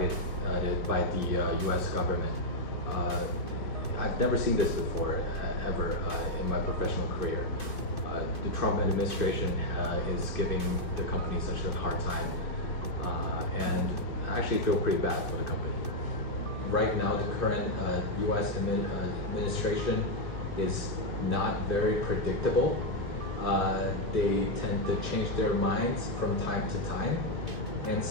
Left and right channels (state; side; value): late; right; 2.5 ms